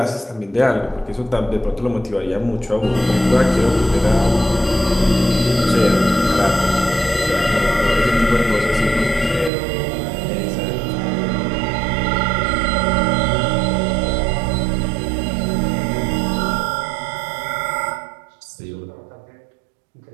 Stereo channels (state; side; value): drops out; left; at 9.5 s